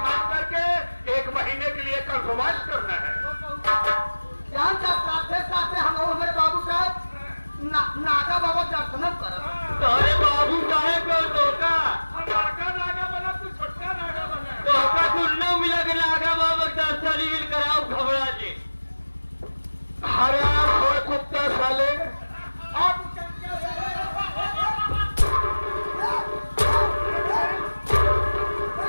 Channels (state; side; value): inverted; both; correlation -1.00